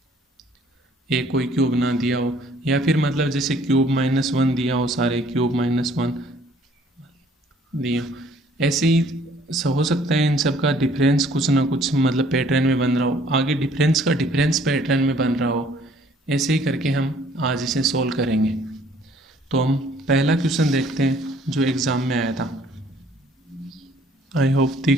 एक कोई क्यूब ना दिया हो, या फिर मतलब जैसे क्यूब -1 दिया हो, सारे क्यूब -1 दिए हो। ऐसे ही हो सकता है इन सब का डिफरेंस कुछ ना कुछ मतलब पैटर्न में बन रहा हो, आगे डिफरेंस का डिफरेंस पैटर्न में बन रहा हो। ऐसे ही करके हम आज इसे सोल्व करेंगे। तो हम पहला क्वेश्चन देखते हैं जो एग्ज़ाम में आया था। आई होप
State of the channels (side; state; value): both; normal; correlation 0.59